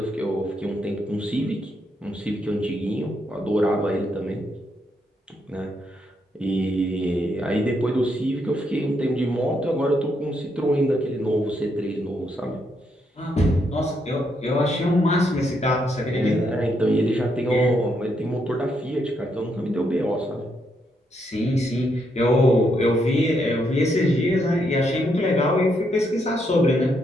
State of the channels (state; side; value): normal; both; correlation 0.77